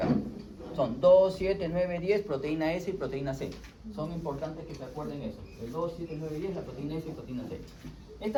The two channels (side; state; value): both; identical; correlation 1.00